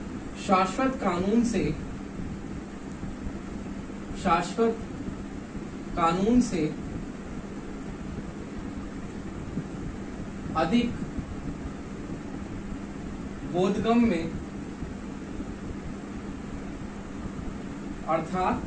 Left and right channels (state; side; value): identical; both; correlation 1.00